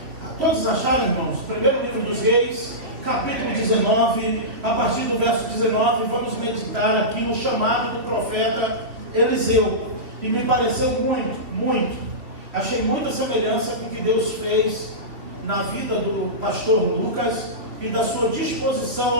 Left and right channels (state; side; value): late; left; 3.4 ms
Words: Todos acharam, irmãos? Primeiro livro dos Reis, capítulo 19, a partir do verso 19, vamos meditar aqui no chamado do profeta Eliseu. E me pareceu muito. Achei muita semelhança com o que Deus fez na vida do pastor Lucas e da sua disposição